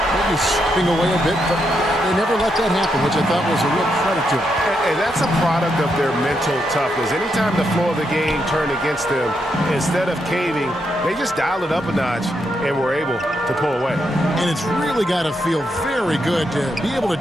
maybe slipping away a bit, but they never let that happen, which I thought was a real credit to them. And that's a product of their mental toughness. Anytime the flow of the game turned against them, instead of caving, they just dialed it up a notch and were able to pull away. And it's really got to feel very good to be able to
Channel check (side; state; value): both; normal; correlation 0.81